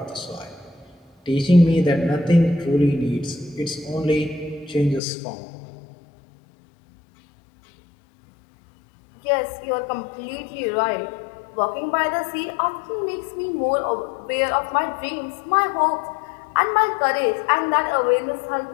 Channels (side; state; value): right; drops out; at 5.0 s